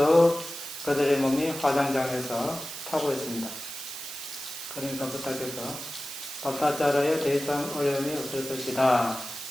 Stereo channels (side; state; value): right; noise; hiss, 9 dB below the sound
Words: 그들의 몸이 화장장에서 타고 있습니다. 그러니까 부탁해서 바타자라에 더 이상 어려움이 없을 것이다.